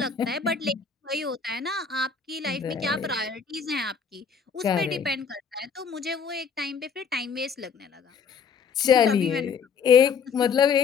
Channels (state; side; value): quieter; right; 6.1 dB